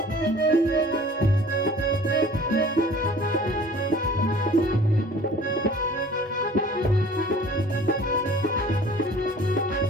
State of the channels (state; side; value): normal; both; correlation 0.48